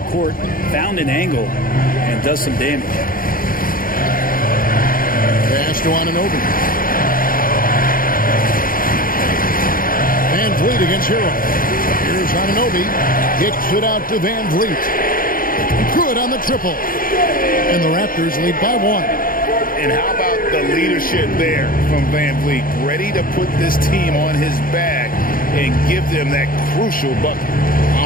court, found an angle, and does some damage. Pass to Anunoby. Van Vliet against Hero. Here's Anunoby. Kicks it out to Van Vliet. Good on the triple. And the Raptors lead by 1. And how about the leadership there from Van Vliet? Ready to put this team on his back and give them that crucial bucket.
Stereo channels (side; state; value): right; late; 0.41 ms